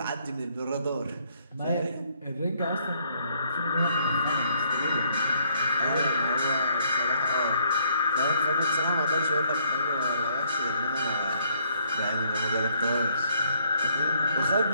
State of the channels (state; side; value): inverted; both; correlation -0.68